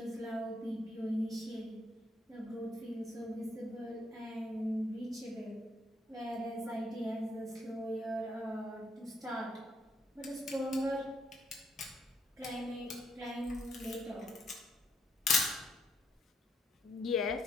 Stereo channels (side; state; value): both; normal; correlation 0.73